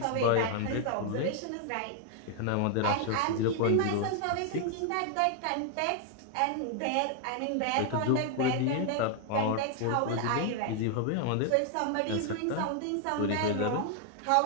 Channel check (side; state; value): both; different; correlation 0.00